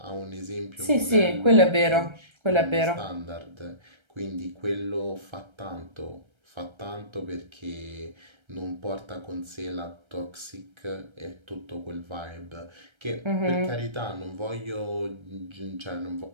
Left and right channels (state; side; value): late; left; 1.3 ms